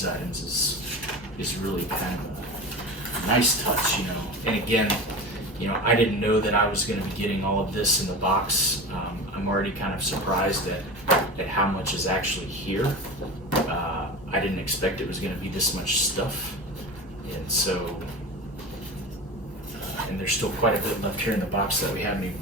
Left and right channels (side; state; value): both; normal; correlation 0.30